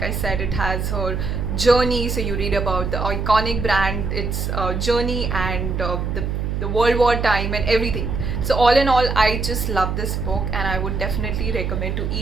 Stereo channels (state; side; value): noise; right; hum, 2 dB below the sound